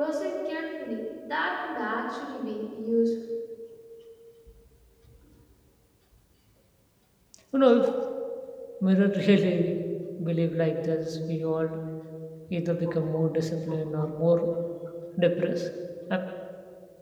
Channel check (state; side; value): identical; both; correlation 1.00